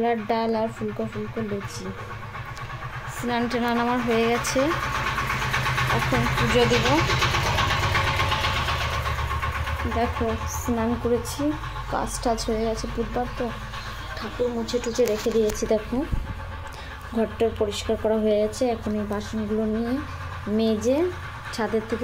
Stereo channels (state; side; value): identical; both; correlation 1.00